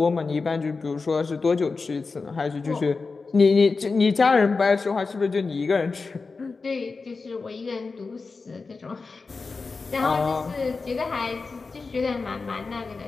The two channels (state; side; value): quieter; right; 4.3 dB